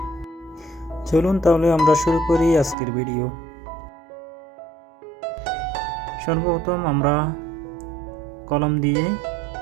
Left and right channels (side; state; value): left; drops out; at 2.8 s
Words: চলুন তাহলে আমরা শুরু করি আজকের ভিডিও। সর্বপ্রথম আমরা কলম দিয়ে